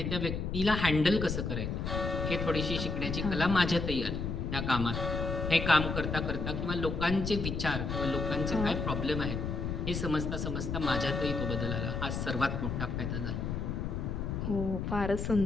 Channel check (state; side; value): noise; left; rumble, 2 dB below the sound